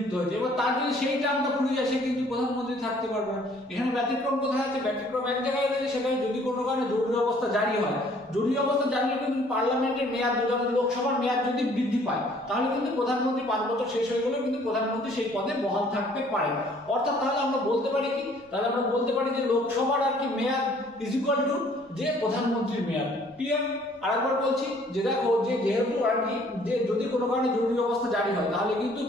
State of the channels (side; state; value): both; normal; correlation 0.58